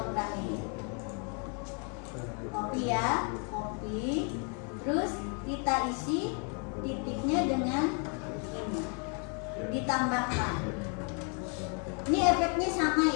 ini. Copy ya, copy. Terus kita isi titiknya dengan ini. Ditambahkan. Ini efeknya sama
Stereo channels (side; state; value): right; quieter; 39.2 dB